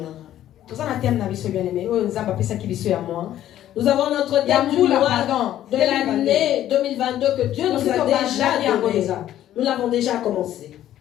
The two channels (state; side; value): quieter; right; 12.3 dB